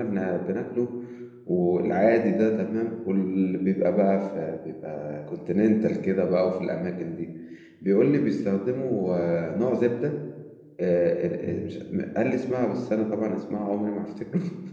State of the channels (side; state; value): both; identical; correlation 1.00